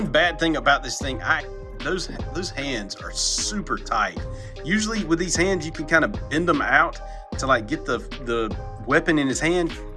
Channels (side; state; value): both; identical; correlation 1.00